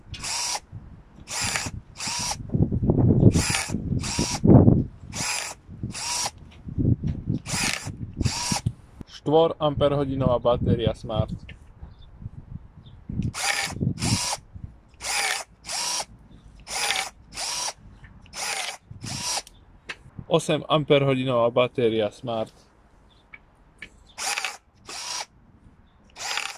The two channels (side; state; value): both; identical; correlation 1.00